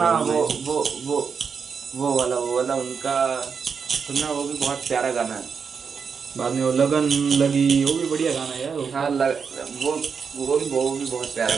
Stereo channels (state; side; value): quieter; left; 6.0 dB